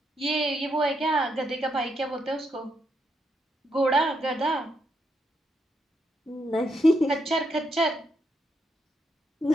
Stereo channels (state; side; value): normal; both; correlation 0.79